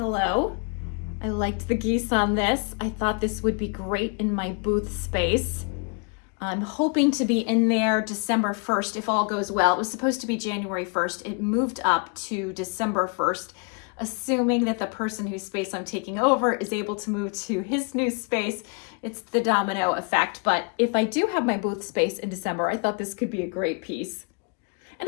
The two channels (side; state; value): right; quieter; 36.3 dB